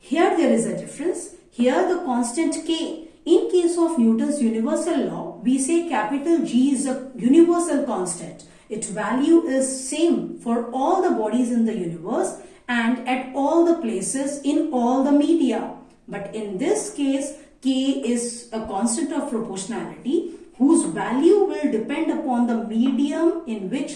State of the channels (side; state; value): both; identical; correlation 1.00